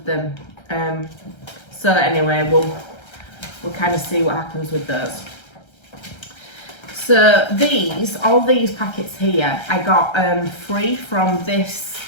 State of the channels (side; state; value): right; late; 1.3 ms